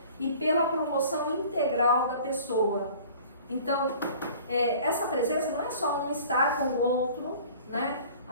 e pela promoção integral da pessoa. Então, essa presença não é só um estar com o outro, né,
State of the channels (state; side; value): inverted; both; correlation -0.47